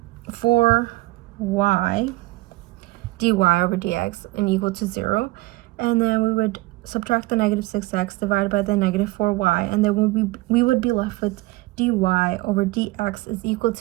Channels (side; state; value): left; quieter; 20.9 dB